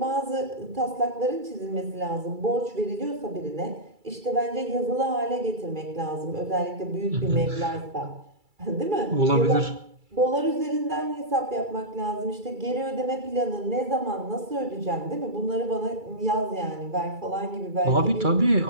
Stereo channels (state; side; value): late; left; 2.3 ms